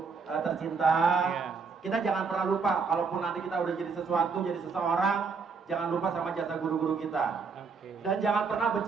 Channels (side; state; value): left; quieter; 5.1 dB